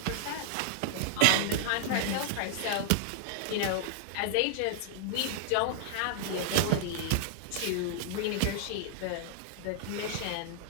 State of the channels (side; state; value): both; different; correlation -0.01